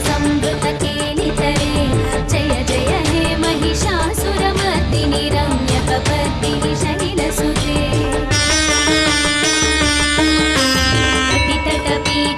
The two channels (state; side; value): identical; both; correlation 1.00